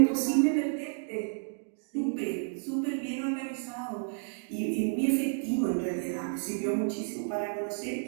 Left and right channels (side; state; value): left; silent; digital silence